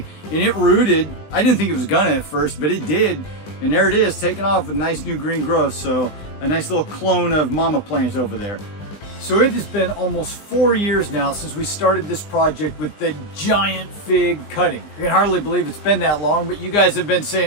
and it rooted. I didn't think it was gonna at first, but it did. And there it is, taking off with nice new green growth. So a nice little clone of mama plant over there. So it has been almost 4 years now since we started this project with the giant fig cutting. I can hardly believe it's been that long, but you guys have been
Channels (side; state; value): right; late; 20 ms